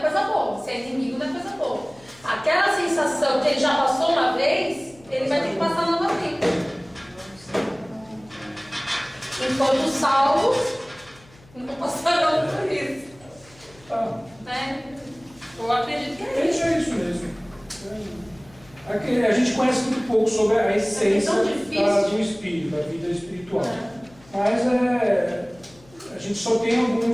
coisa boa. Se é inimigo, não é coisa boa. Aquela sensação que ele já passou uma vez, ele vai ter que passar novamente. Enquanto os salvos não passarão por isso. Né? Eu acredito que é É isso. isso mesmo. Aqui, a gente conhece muito pouco sobre a essência tão difícil. do espírito, da vida espiritual. Mas a gente só tem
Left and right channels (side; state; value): left; noise; hum, 26 dB below the sound